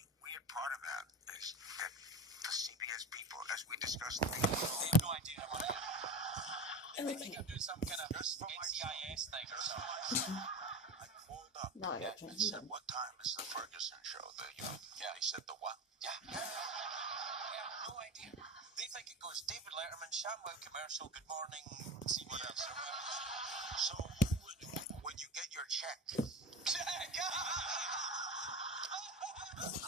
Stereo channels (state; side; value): normal; both; correlation 0.26